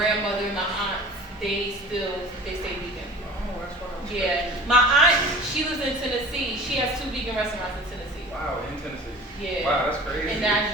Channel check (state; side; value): normal; both; correlation 0.41